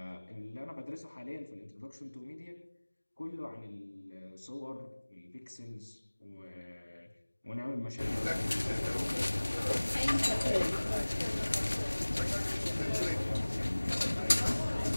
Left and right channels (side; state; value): both; inverted; correlation -1.00